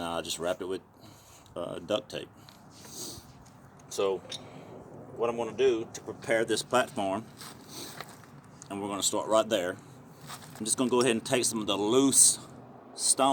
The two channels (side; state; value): both; identical; correlation 1.00